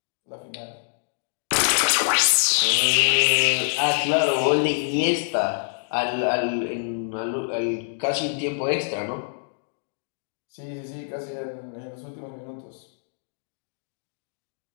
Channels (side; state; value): right; silent; digital silence